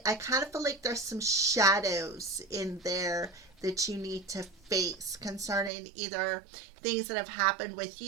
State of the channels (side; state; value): left; drops out; at 5.7 s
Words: kind of feel like there's some shadows in there that you need to face concerning either things that have happened with